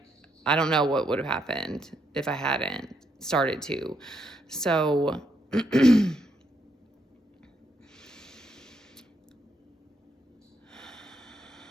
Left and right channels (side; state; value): both; normal; correlation 0.77